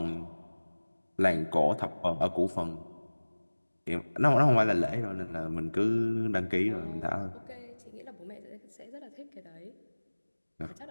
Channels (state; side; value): inverted; both; correlation -1.00